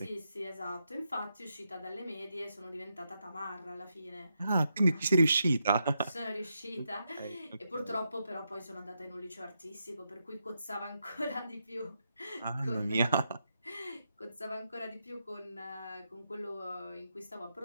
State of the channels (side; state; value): both; inverted; correlation -0.83